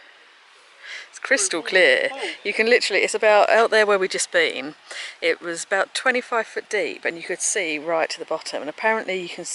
It's crystal clear. You can literally. It's about out there where we just been. It was about 25 foot deep, and you could see right to the bottom. And apparently, you can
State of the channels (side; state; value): both; identical; correlation 1.00